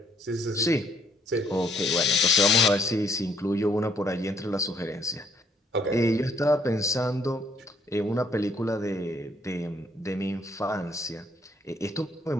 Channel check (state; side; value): normal; both; correlation 0.66